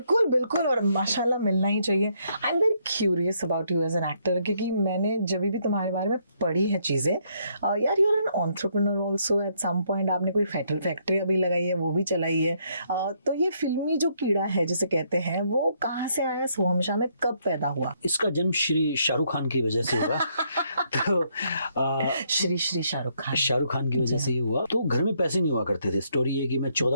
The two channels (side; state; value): both; inverted; correlation -0.72